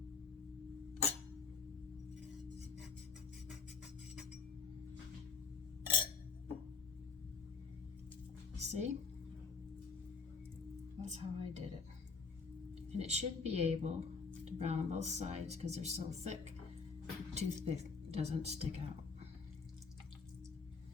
See? That's how I did it. And it should be able to brown on both sides because they're so thick. The toothpick doesn't stick out.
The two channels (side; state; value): right; quieter; 5.0 dB